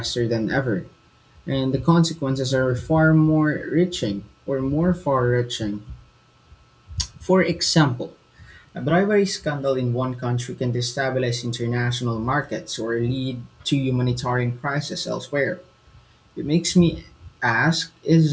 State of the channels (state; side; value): identical; both; correlation 1.00